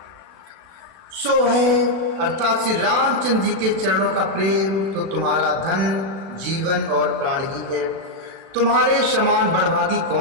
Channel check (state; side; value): late; left; 36 ms